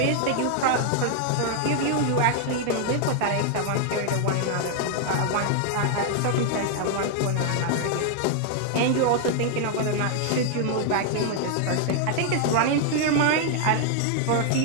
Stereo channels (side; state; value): both; different; correlation 0.00